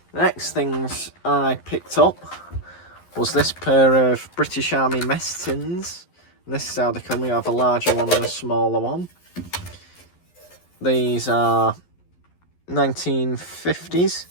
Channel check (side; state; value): right; late; 11 ms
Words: The next things I picked up was this pair of British Army Messins. This is how they come. We have a larger one and a smaller one. These are 1950s,